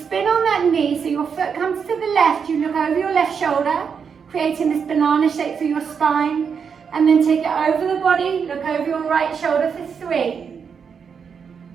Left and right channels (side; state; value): left; quieter; 6.5 dB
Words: on that knee so your foot comes to the left. You look over your left shoulder, creating this banana shape for your spine. And then take it over the body, look over your right shoulder for 3.